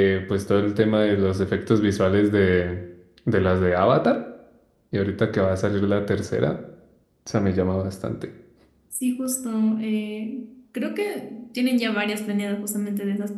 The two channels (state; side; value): identical; both; correlation 1.00